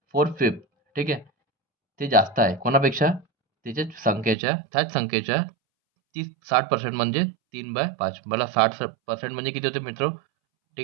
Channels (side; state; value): left; drops out; at 4.4 s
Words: 4/5. ठीक आहे. ते जास्त आहे कोणापेक्षा त्याच्या संख्येच्या त्याच संख्येच्या ती 60% म्हणजे 3/5. मला 60% म्हणजे किती होते मित्र.